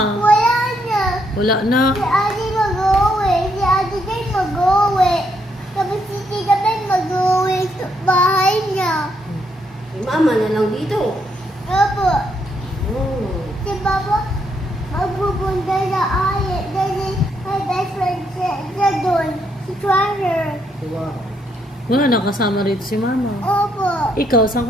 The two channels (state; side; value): normal; both; correlation 0.75